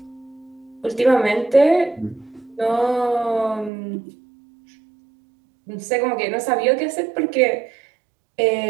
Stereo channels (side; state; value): left; drops out; at 3.7 s